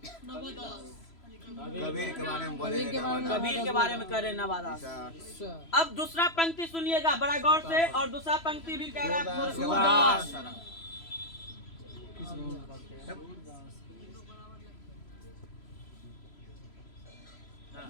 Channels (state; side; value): late; right; 3.0 ms